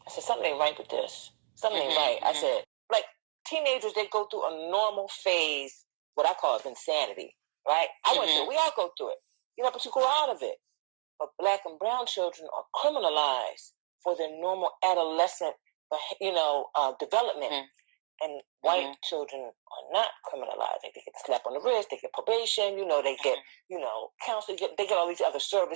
something ain't right with this. Something ain't right. I said, like teenagers, they go through a normal phase, what I call insanity, right? I went through it. We all go through it, but you go out of it. But Black and brown children are criminalized for their normal adolescent, development. And white children are not criminalized. They get a slap on the wrist, they get probation, they get, counseling, they get all these other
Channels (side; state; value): left; silent; digital silence